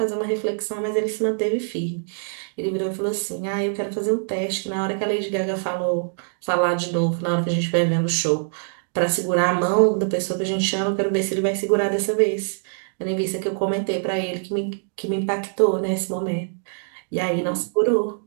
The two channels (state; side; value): silent; left; digital silence